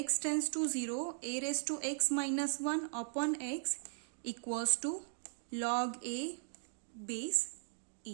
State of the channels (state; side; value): silent; left; digital silence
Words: tends to 0 a raise to x minus 1 upon x equals to log a base